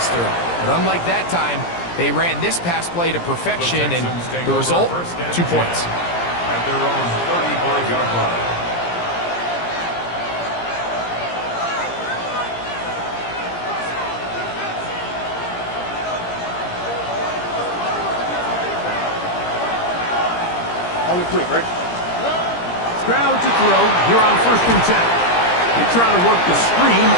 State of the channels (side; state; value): right; late; 17 ms